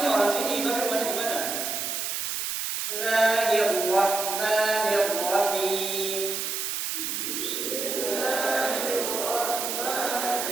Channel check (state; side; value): noise; right; hiss, 2 dB below the sound